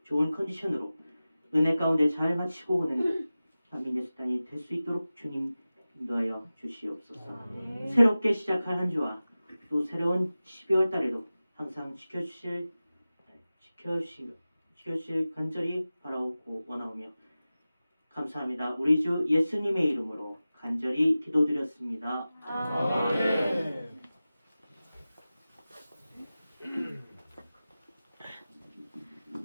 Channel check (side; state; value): both; inverted; correlation -0.96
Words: 좋은 컨디션으로 은혜 가운데 잘 마치고 오는 한민예술단이 될 수 있도록 주님 인도하여 주시옵소서. 새롭게 시작할 한 주와 또 새로운 12월 달에도 항상 지켜주실 간절히 바라오고 원하오며 감사합니다. 우리 주 예수님의 이름으로 간절히 기도드렸습니다. 아멘.